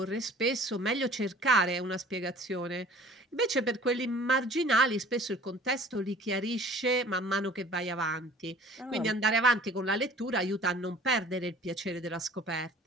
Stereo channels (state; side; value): normal; both; correlation 0.49